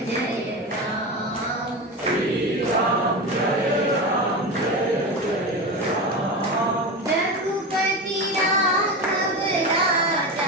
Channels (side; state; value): both; normal; correlation 0.22